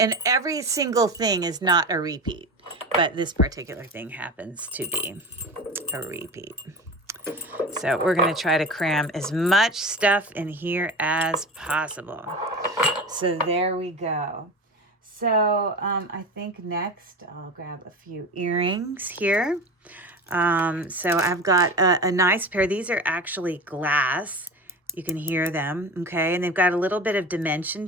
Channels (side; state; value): both; normal; correlation 0.30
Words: every single thing is not a repeat, but this particular thing happens to be a repeat. So we're going to try to cram as much stuff in here as possible. So there we go. So I think next I'll grab a few earrings here. So I've got a nice pair. These are actually glass. You can hear them, okay? And they've got a little bit of dimension